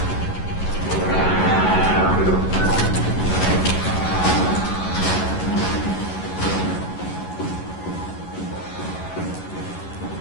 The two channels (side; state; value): right; late; 11 ms